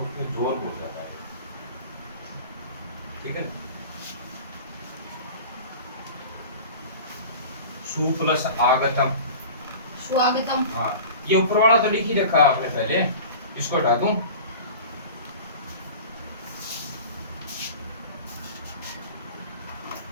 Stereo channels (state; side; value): inverted; both; correlation -0.38